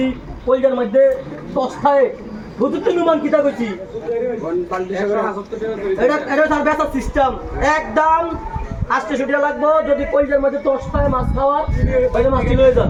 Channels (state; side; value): identical; both; correlation 1.00